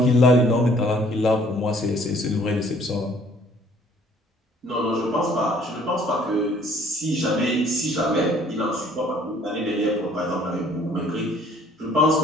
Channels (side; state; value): both; normal; correlation 0.58